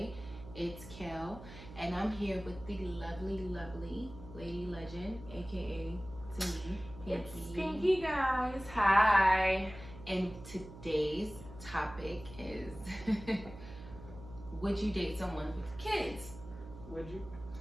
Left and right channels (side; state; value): right; noise; hum, 15 dB below the sound